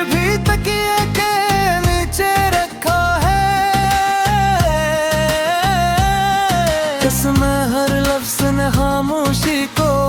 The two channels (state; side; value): identical; both; correlation 1.00